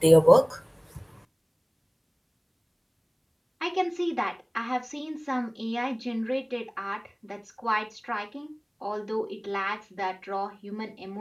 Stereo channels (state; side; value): identical; both; correlation 1.00